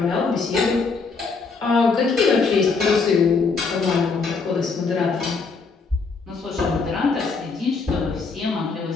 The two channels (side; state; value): right; quieter; 4.6 dB